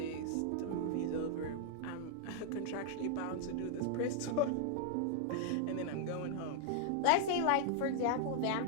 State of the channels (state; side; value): different; both; correlation 0.00